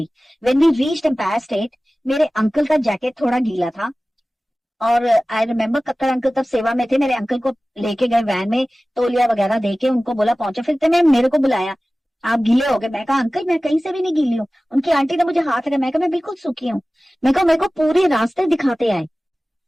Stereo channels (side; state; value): both; normal; correlation 0.97